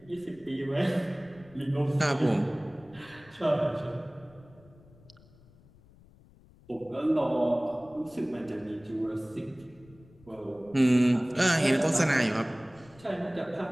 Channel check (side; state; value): left; noise; rumble, 26 dB below the sound